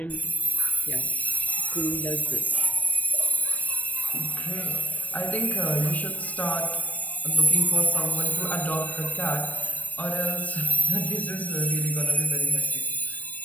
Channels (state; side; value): late; right; 0.071 ms